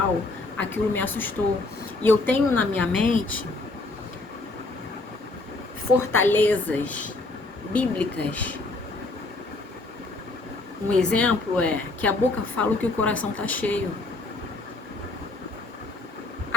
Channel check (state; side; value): quieter; right; 3.1 dB